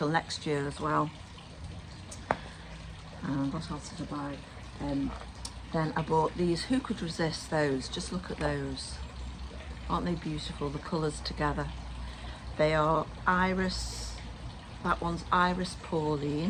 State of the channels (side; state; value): both; identical; correlation 1.00